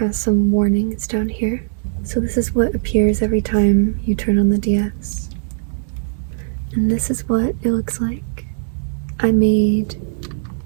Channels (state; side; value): silent; left; digital silence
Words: some warnings down here. So this is what appears every time you turn on the DS. And this is what it looks like. I made